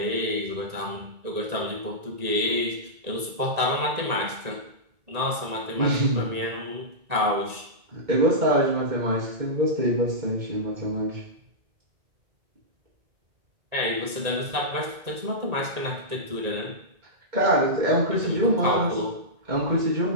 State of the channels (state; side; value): late; left; 1.9 ms